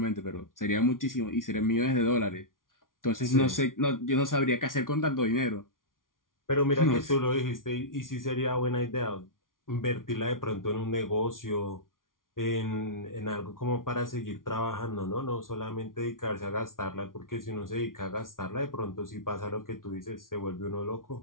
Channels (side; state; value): right; late; 0.89 ms